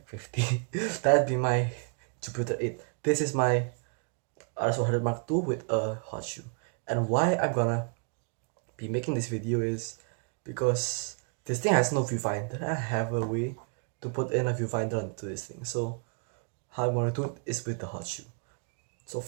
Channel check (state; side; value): quieter; left; 38.4 dB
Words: 50? That'd be my Jupiter 8. This is my RX100 Mark II with a hot shoe. And why I'm gonna be making this video is because this thing has no viewfinder. I have a way to put in a viewfinder onto this thing. So how I'm gonna do it is with the hot shoe. So